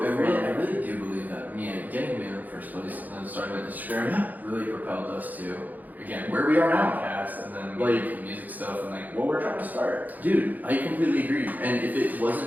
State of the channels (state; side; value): late; left; 0.082 ms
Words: I really do believe that. I mean, getting me in the first place and then starting with Instagram really propelled us to, again, where we are now. Podcast and then like music stuff and like what we're trying to start. Dude, I completely agree. And if it